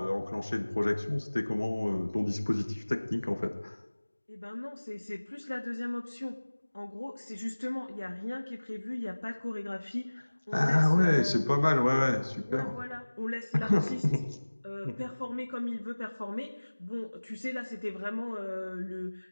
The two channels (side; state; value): both; inverted; correlation -1.00